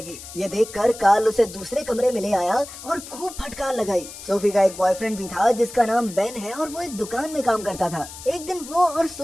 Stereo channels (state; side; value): noise; left; hiss, 14 dB below the sound